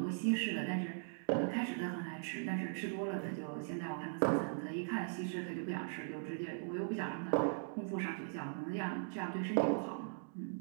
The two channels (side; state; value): left; silent; digital silence